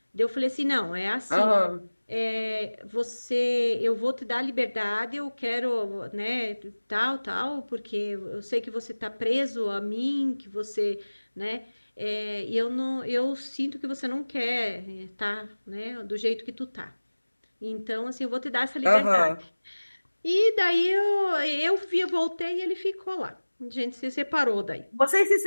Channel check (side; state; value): both; inverted; correlation -1.00